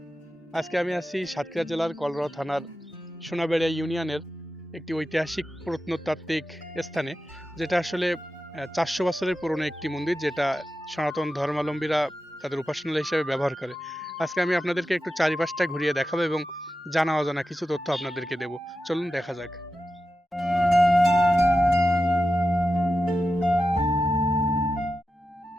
আজকে আমি আছি সাতক্ষীরা জেলার কলরোয়া থানার সোনাবেড়িয়া ইউনিয়নের একটি ঐতিহাসিক প্রত্নতাত্ত্বিক স্থানে, যেটা আসলে ৪০০ বছরের পুরনো একটি মন্দির, যেটা সনাতন ধর্মাবলম্বীরা তাদের উপাসনালয় হিসেবে ব্যবহার করে। আজকে আমি আপনাদেরকে একটু চারিপাশটা ঘুরিয়ে দেখাবো এবং জানা অজানা কিছু তথ্য আপনাদেরকে দেব। চলুন দেখা যাক।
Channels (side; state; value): both; normal; correlation 0.91